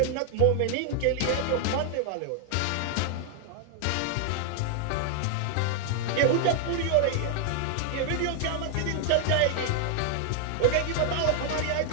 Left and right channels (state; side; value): different; both; correlation 0.00